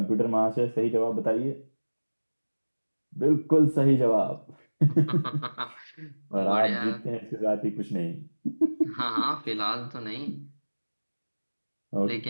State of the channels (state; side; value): inverted; both; correlation -1.00